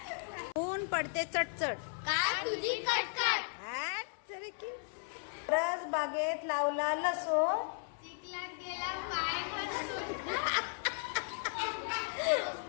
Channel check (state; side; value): silent; right; 54 dB below the other